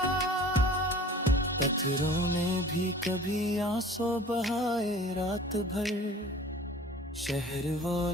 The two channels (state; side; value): normal; both; correlation 0.46